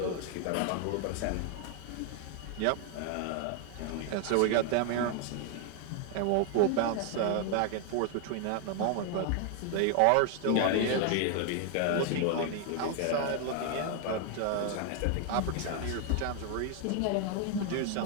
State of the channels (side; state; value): both; different; correlation 0.00